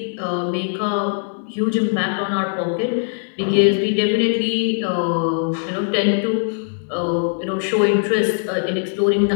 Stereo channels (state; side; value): silent; right; 65 dB below the other